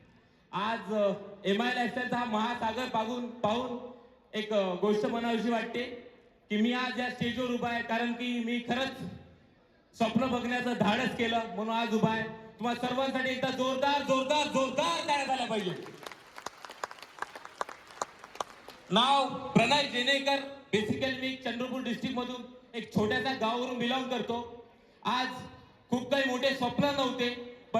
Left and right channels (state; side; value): identical; both; correlation 1.00